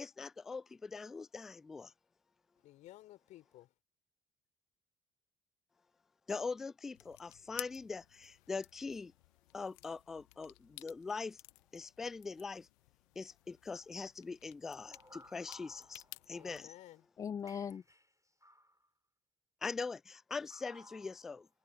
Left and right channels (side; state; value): right; quieter; 4.6 dB